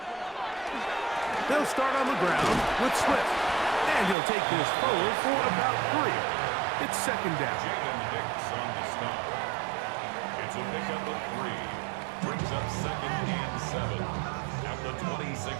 They'll start on the ground with Swift. And he'll take this forward for about 3. It's second down. Jaden Hicks on the stop. It's a pickup of 3. Brings up second and 7 at the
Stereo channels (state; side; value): drops out; left; at 4.2 s